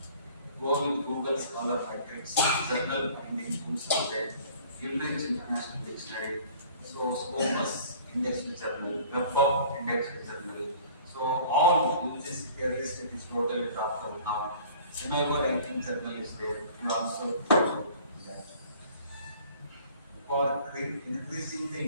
Go with Google Scholar Matrix, journal finding tools are there, Cambridge International Dictionary, so Scopus Indexed Journal, WebOp Indexed Journal. So all uses here list it is totally dropped out now. Semigo ranking journal is there. You also that. For increasing the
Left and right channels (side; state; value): both; inverted; correlation -0.49